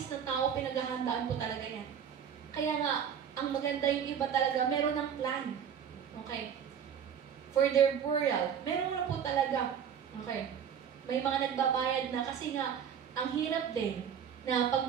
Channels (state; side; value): quieter; left; 8.1 dB